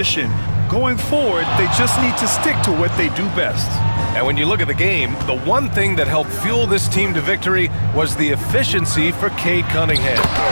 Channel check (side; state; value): both; inverted; correlation -1.00